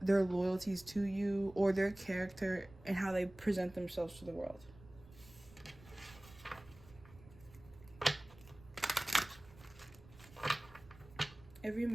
their loyalties to you or their character and how they present themselves to the world. Every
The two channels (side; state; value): right; noise; rumble, 22 dB below the sound